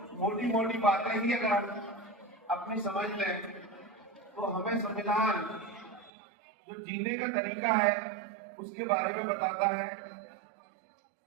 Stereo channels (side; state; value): left; drops out; at 6.1 s